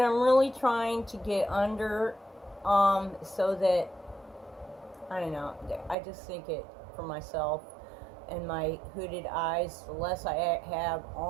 I'm really trying to get under, so that, I don't know, I just think it, for myself and my hooded eyes, the less I have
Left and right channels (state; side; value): drops out; left; at 6.0 s